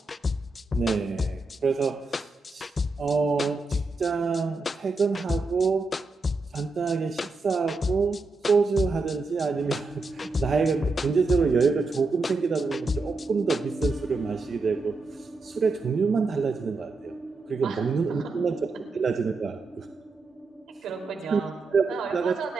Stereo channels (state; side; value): quieter; left; 3.4 dB